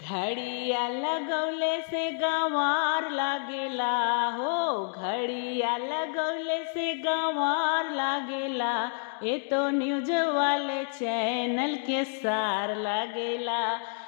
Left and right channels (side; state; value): right; silent; 59 dB below the other